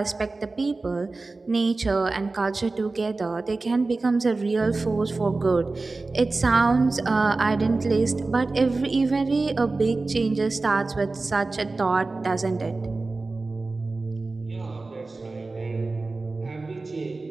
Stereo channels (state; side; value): quieter; left; 3.5 dB